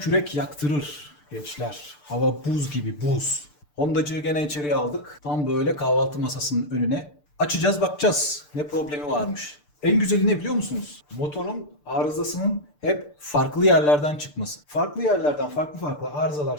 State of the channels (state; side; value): late; right; 6.8 ms